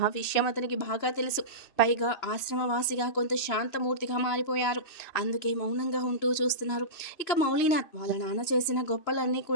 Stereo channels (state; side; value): late; right; 2.5 ms